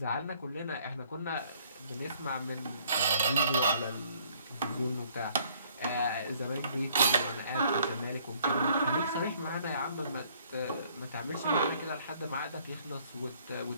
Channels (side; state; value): both; inverted; correlation -0.62